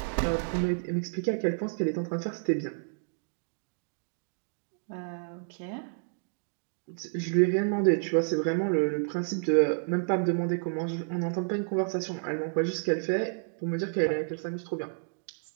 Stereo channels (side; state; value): left; silent; digital silence